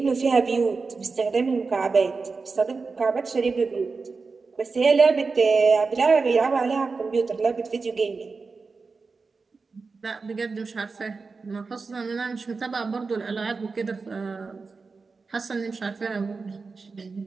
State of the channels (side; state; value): left; quieter; 4.4 dB